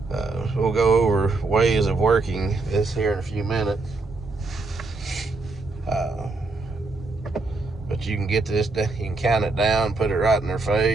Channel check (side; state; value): left; quieter; 3.5 dB